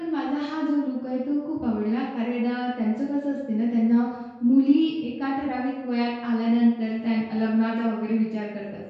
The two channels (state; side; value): identical; both; correlation 1.00